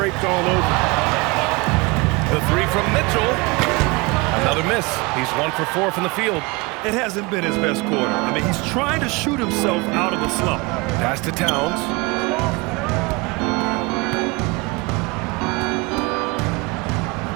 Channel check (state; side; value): quieter; left; 25.5 dB